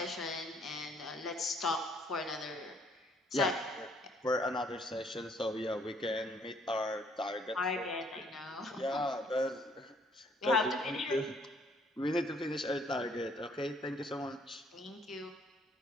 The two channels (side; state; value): both; normal; correlation 0.64